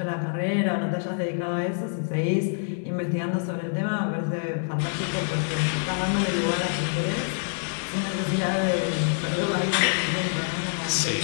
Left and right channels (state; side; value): silent; right; digital silence